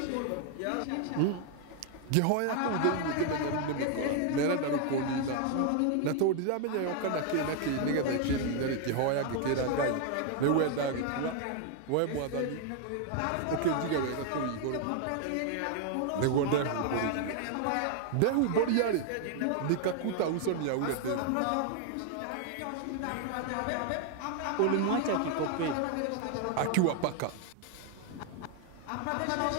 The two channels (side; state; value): both; different; correlation 0.00